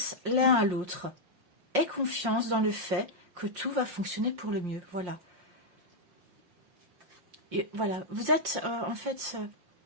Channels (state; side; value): late; left; 5.6 ms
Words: l'un à l'autre. Aie confiance dans le fait que tout va fonctionner pour le mieux. Voilà. Et voilà, vous êtes en fait,